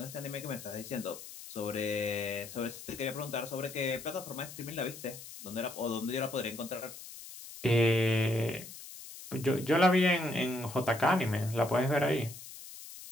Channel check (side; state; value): left; noise; hiss, 14 dB below the sound